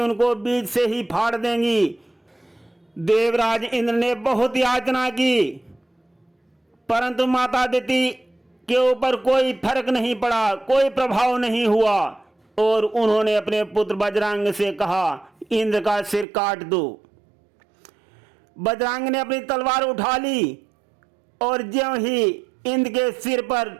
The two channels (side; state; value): left; drops out; at 16.2 s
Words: उनको बीच से ही फाड़ देंगी। देवराज इंद्र ने बहुत याचना की, परंतु माता दिति के ऊपर कोई फर्क नहीं पड़ा, कोई प्रभाव नहीं हुआ, और उन्होंने अपने पुत्र बजरंग से कहा, इंद्र का सिर काट दो। बजरंग ने अपनी तलवार उठा ली, और ज्यों ही इंद्र के सिर पर